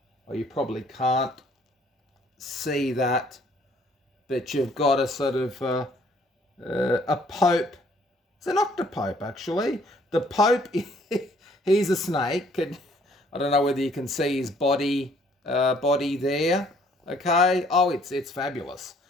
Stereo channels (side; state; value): both; normal; correlation 0.62